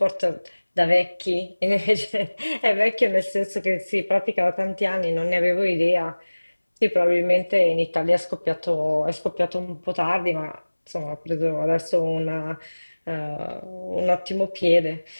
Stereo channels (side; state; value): both; inverted; correlation -1.00